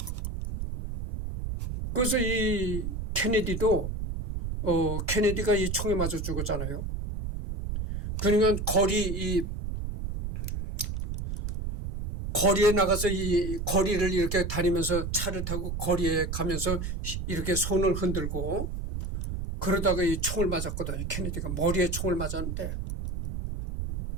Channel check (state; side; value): noise; right; rumble, 4 dB below the sound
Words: 그래서 이 케네디도 케네디가 이 총에 맞아 죽었잖아요. 그러니까 거리에 나가서 이 거리를 이렇게 다니면서 차를 타고 거리에 가면서 이렇게 손을 흔들고 그러다가 이 총을 맞았거든요. 케네디가 머리에 총을 맞았는데